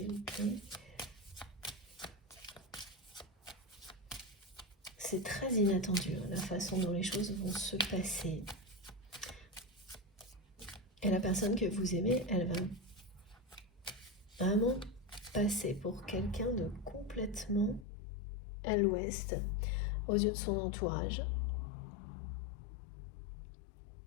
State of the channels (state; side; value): drops out; right; at 17.9 s